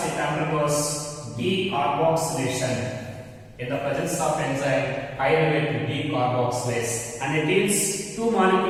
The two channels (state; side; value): identical; both; correlation 1.00